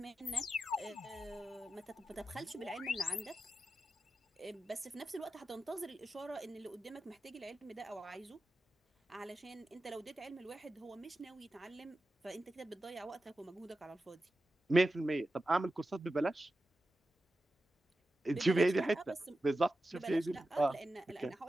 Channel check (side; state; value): both; normal; correlation 0.92